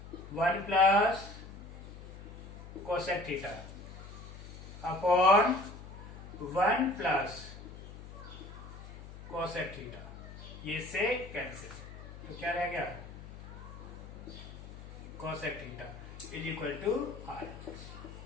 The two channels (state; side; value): noise; left; hum, 13 dB below the sound